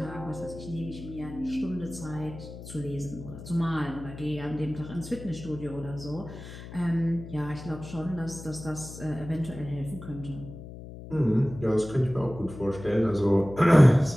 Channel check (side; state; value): left; noise; hum, 13 dB below the sound